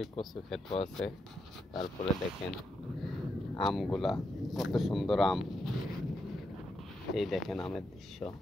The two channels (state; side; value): normal; both; correlation 0.83